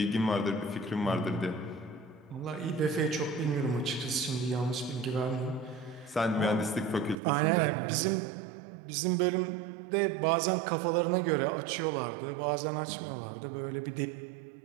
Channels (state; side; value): drops out; left; at 7.2 s